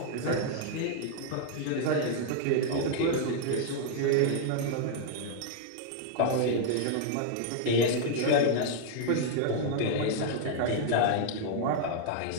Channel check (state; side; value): different; both; correlation -0.01